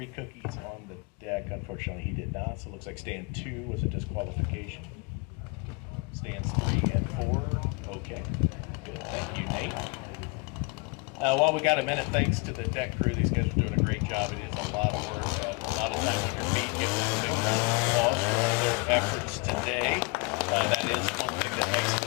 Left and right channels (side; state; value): right; quieter; 29.8 dB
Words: cookies on the deck. Unfortunately, he did not, so it looks like stand 2 was a disqualification. Stands 3 and 4, okay. Good, thank you, Nate. While we got a minute, thanks to the deck crew. These guys are doing a great job. It is a lot of work, a lot of time on your feet. Give them a big round of applause for all their efforts today. That is one thing that makes